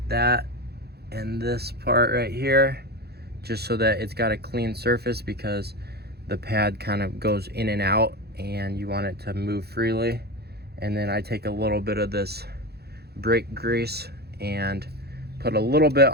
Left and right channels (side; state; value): left; late; 0.47 ms